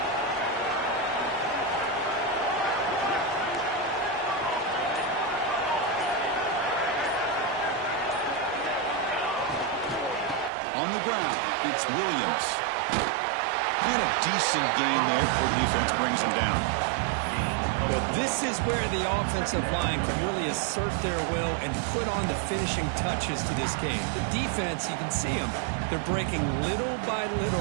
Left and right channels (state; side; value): drops out; left; at 10.5 s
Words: On the ground, it's Williams. And a decent gain there before the defense brings him down. Well, this is where the offensive line can really assert their will and put on the finishing touches to this game. The defense, you can see them. They're breaking little by